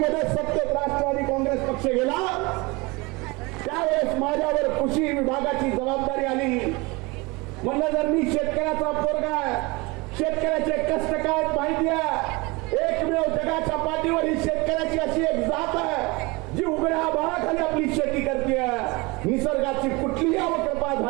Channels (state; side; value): quieter; left; 25.2 dB